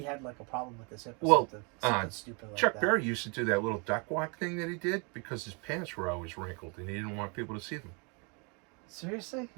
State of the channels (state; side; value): quieter; left; 32.9 dB